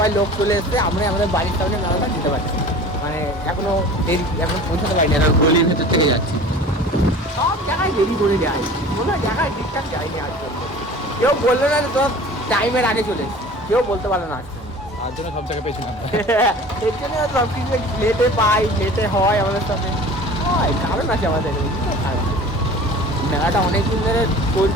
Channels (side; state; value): both; normal; correlation 0.42